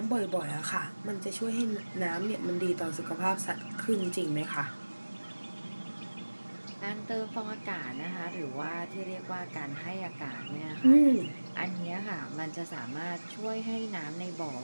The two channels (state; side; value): inverted; both; correlation -1.00